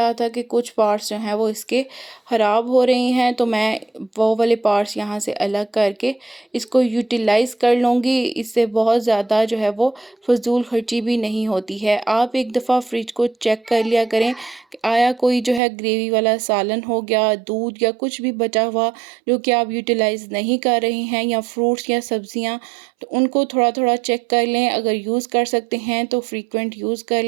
था कि कुछ पार्ट्स जो हैं वो इसके ख़राब हो रहे हैं, तो मैं वो वाले पार्ट्स यहाँ से अलग करके इसको यूटिलाइज़ कर लूँगी। इससे बहुत ज़्यादा जो है वो फ़िज़ूल खर्ची भी नहीं होती है। आप एक दफ़ा फ्रिज को चेक कर लिया करें कि आया कोई जो है ग्रेवी वाला सालन हो गया, दूध या कुछ भी बचा हुआ जो कि आप यूटिलाइज़ नहीं कर रहे हैं, या फ्रूट्स या सब्ज़ियाँ, तो उनको थोड़ा-थोड़ा चेक कर लें। अगर यूज़ कर सकते हैं तो फ्रीक्वेंट यूज़ कर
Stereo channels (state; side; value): drops out; left; at 15.6 s